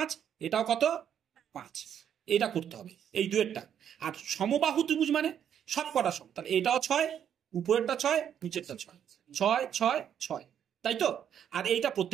এটাও কত? 5। এটা করতে হবে এই দুয়েরটা। আর সমবাহু ত্রিভুজ মানে সব কটা সম, তাহলে এটাও 6, উপরেরটা 6 নিচেরটা 6, 6 6 6, তাই তো। আর এইটা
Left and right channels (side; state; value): left; quieter; 9.1 dB